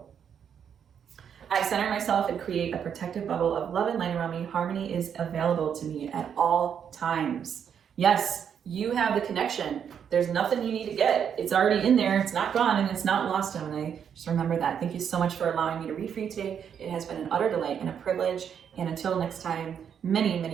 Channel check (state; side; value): quieter; left; 8.0 dB